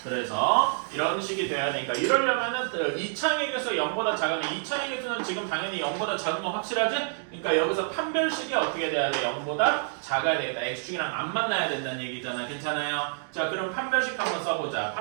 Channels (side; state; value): left; silent; digital silence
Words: 그래서 이런 식이 되어야 되니까 이러려면은 이창의 개수 0보다 작으니 이창의 개수는 지금 당연히 0보다 작은 건 확실하지? 그러니까 여기서 판별식이 어떻게 돼야 돼? 0보다 작아야 되겠다. x축이랑 안 만나야 된다는 얘기잖아. 괜찮아요? 자, 그럼 판별식 한번 써보자.